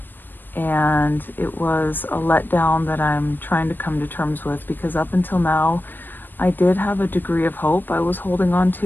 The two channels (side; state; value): right; late; 0.093 ms